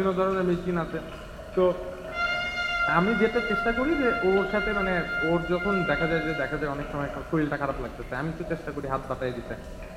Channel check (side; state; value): both; identical; correlation 1.00